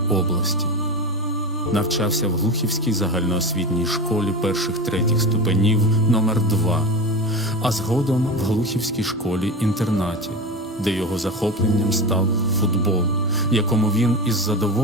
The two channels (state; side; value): normal; both; correlation 0.25